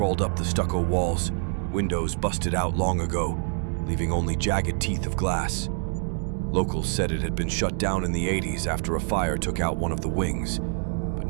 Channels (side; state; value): left; silent; 57 dB below the other